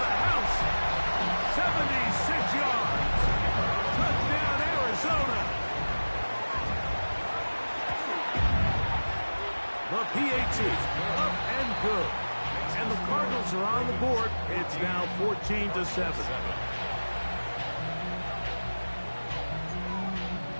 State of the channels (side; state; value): both; inverted; correlation -1.00